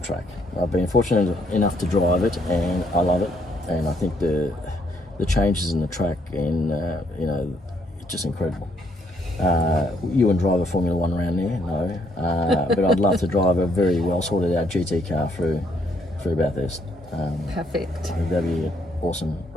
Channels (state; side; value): normal; both; correlation 0.71